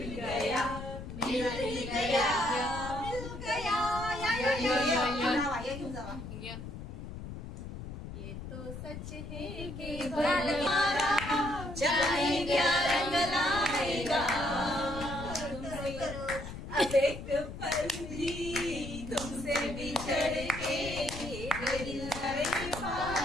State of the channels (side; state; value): left; noise; rumble, 9 dB below the sound